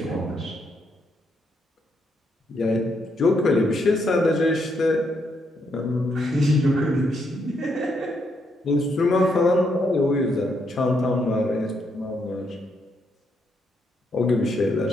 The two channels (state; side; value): normal; both; correlation 0.77